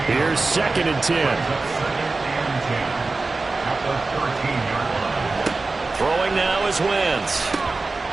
Here's 2nd and 10. Throwing now is Wentz.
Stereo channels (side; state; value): left; quieter; 3.6 dB